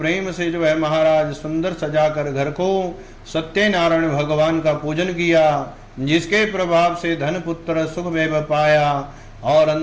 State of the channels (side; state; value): both; identical; correlation 1.00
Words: से जो है महाराज सुंदर सजाकर घर को सत्यनारायण भगवान का पूजन किया, जिसके प्रभाव से धन पुत्र सुख वैभव पाया और